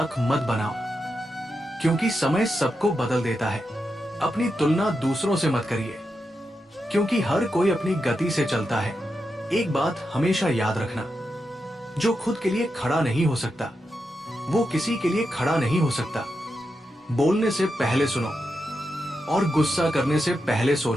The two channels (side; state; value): both; normal; correlation 0.87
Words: मत बनाओ, क्योंकि समय सबको बदल देता है। अपनी तुलना दूसरों से मत करिए, क्योंकि हर कोई अपनी गति से चलता है। एक बात हमेशा याद रखना, जो खुद के लिए खड़ा नहीं हो सकता वो किसी के लिए खड़ा नहीं हो सकता। बोलने से पहले सुनो और गुस्सा करने से पहले